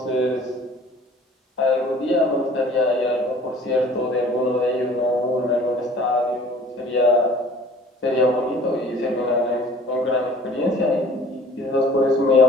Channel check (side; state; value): both; normal; correlation 0.49